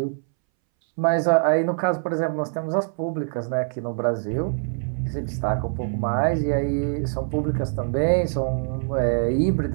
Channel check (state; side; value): silent; left; 63 dB below the other